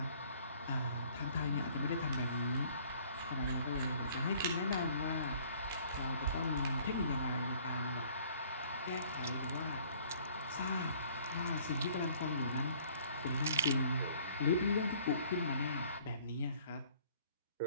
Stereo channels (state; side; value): inverted; both; correlation -0.56